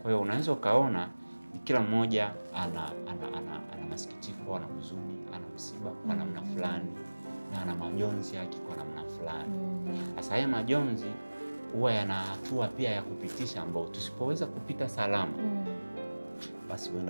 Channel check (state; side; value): inverted; both; correlation -1.00